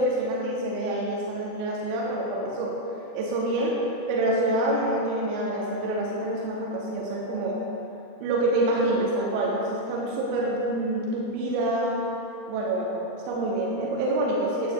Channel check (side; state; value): left; late; 40 ms